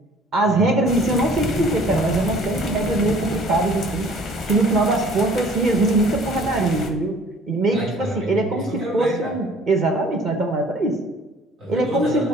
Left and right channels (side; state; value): both; normal; correlation 0.52